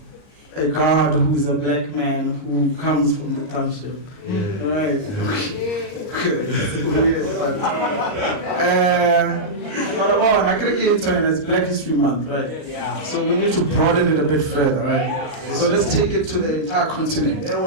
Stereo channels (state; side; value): late; right; 39 ms